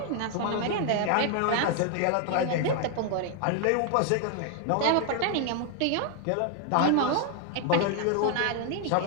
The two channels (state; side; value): different; both; correlation 0.00